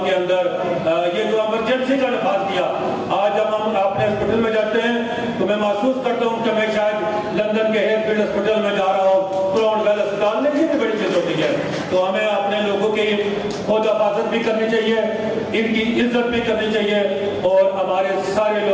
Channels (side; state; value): both; identical; correlation 1.00